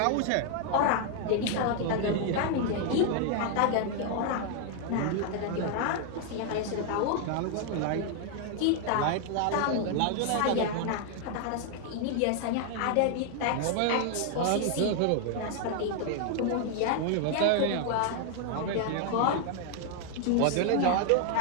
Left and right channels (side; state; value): both; different; correlation 0.00